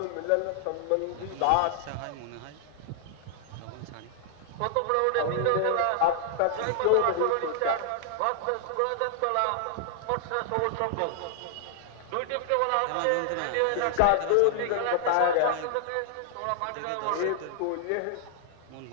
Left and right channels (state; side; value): different; both; correlation -0.01